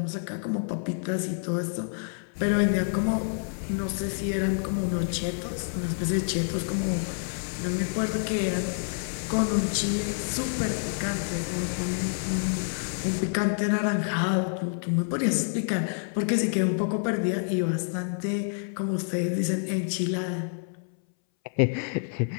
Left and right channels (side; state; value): right; silent; 59 dB below the other